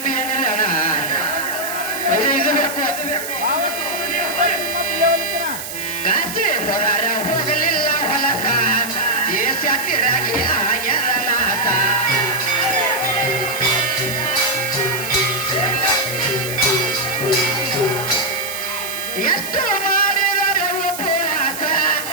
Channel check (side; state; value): right; noise; hiss, 8 dB below the sound